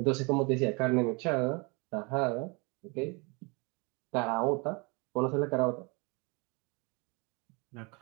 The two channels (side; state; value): left; quieter; 29.7 dB